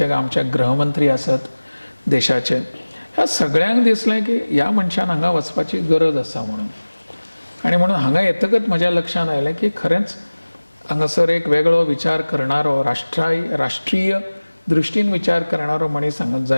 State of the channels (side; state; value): both; inverted; correlation -1.00